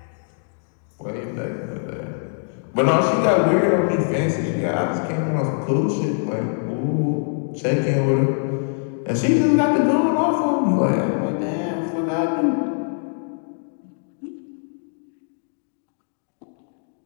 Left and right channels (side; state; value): right; silent; digital silence